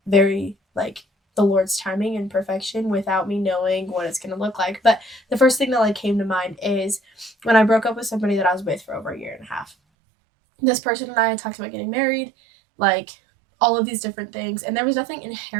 very, like, the Lord's timing and perfection without me knowing what it's going to look like. But the first thing that, like, came to mind is when I broke up with somebody that I was with for over a year and a half. This person and I had talked about getting married, like, all of these different things. And there was nothing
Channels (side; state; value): left; drops out; at 9.8 s